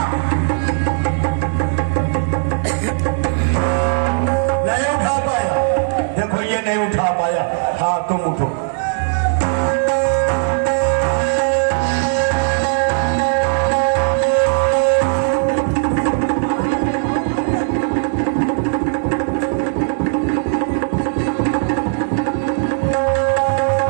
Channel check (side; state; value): left; silent; digital silence